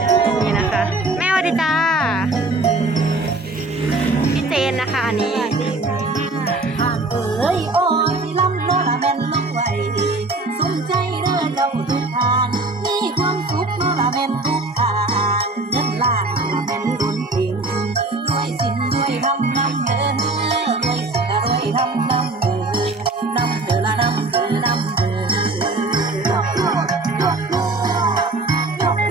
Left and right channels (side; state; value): left; quieter; 3.1 dB